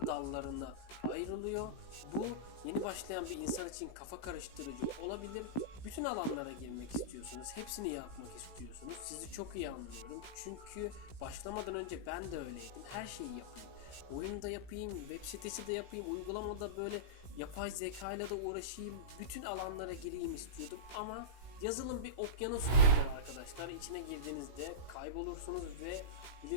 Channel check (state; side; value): late; right; 16 ms